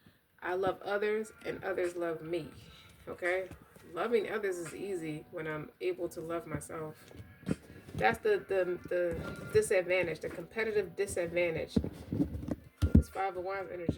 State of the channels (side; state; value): both; identical; correlation 1.00